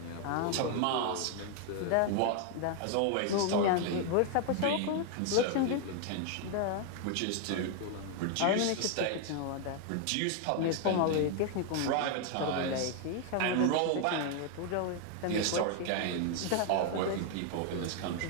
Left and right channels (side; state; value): both; different; correlation 0.00